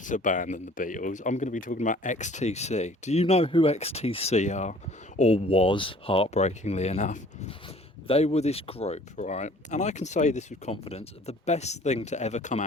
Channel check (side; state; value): both; normal; correlation 0.52